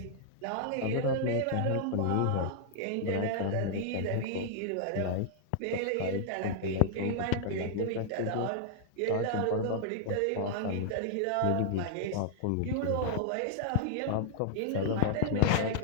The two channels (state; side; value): different; both; correlation -0.01